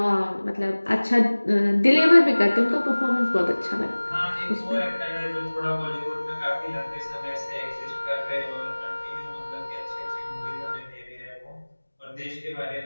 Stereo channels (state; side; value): inverted; both; correlation -1.00